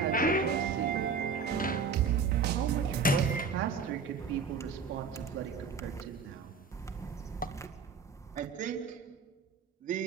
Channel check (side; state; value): left; quieter; 5.3 dB